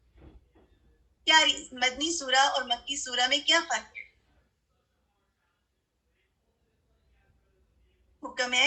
کیا مدنی سورہ اور مکی سورہ میں کیا فرق ہے؟ حکم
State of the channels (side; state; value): both; identical; correlation 1.00